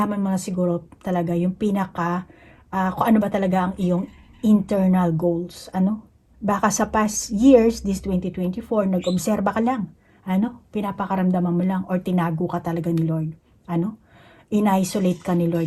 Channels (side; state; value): both; identical; correlation 1.00